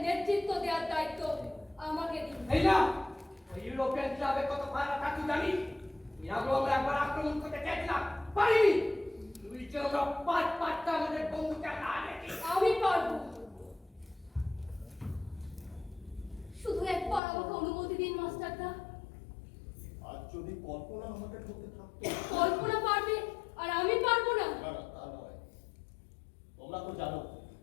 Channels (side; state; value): right; drops out; at 17.2 s